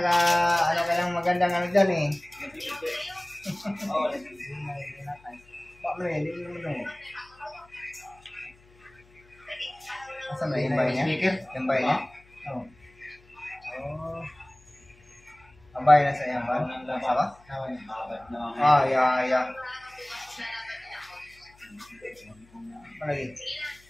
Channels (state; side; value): noise; left; hum, 28 dB below the sound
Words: ka lang magandang ano dyan eh. Paano eh, hindi mo naman. Asa na yung bahay niya? Yung bahay niya? Oo. Ang bahay na sa iyang ba? Nasa ba? Yeah. Malagi.